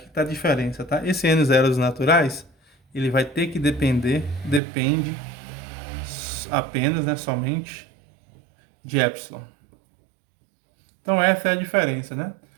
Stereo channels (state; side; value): drops out; left; at 4.6 s